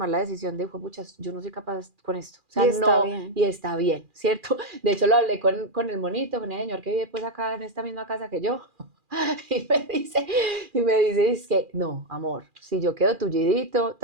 la decisión de, puchas, yo no soy capaz con esto. O sea, y está bien, ¿cierto? De hecho, lo hablé con el monito, con el señor que vive pues acá en esta misma casa que yo. Y me dice, es que, no, amor, si yo quedo tullidito,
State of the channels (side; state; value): left; late; 2.4 ms